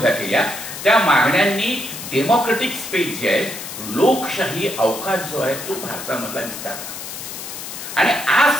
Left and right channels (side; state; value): left; noise; hiss, 9 dB below the sound